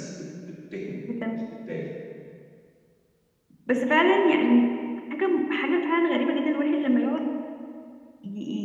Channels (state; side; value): identical; both; correlation 1.00